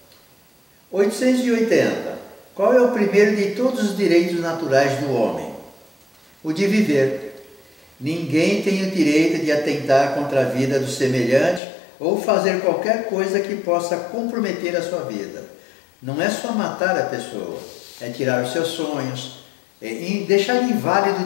880. Qual é o primeiro de todos os direitos naturais do homem? O de viver. Ninguém tem o direito de atentar contra a vida do semelhante ou fazer qualquer coisa que possa comprometer a sua vida. Não é só matar a pessoa, é tirar os seus sonhos, deixar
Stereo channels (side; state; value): right; drops out; at 11.6 s